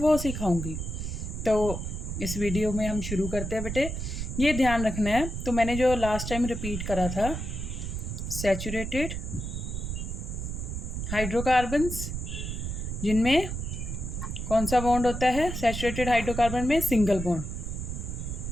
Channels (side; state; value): right; noise; rumble, 5 dB below the sound